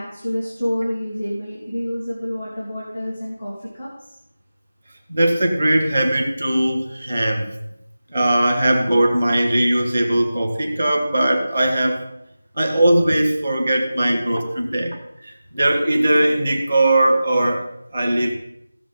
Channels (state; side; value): inverted; both; correlation -0.94